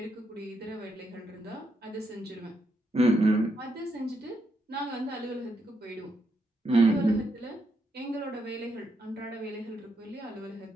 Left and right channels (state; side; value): normal; both; correlation 0.80